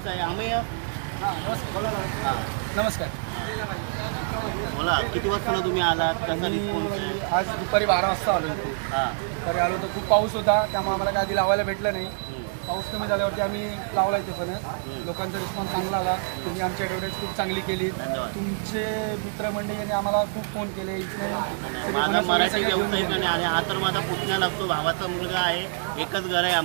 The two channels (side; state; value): left; silent; digital silence